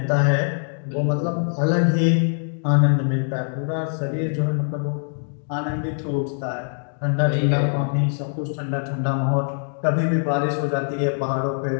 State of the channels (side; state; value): right; silent; digital silence